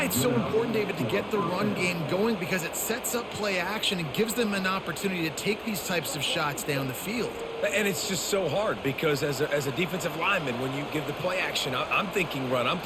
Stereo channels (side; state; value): both; identical; correlation 1.00